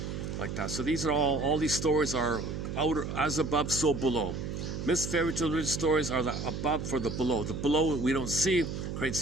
like that. So these are all these stories are outer, as above, so below. Myths, fairy tales, religious stories are the above for the below. The below we don't see, create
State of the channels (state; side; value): noise; right; hum, 5 dB below the sound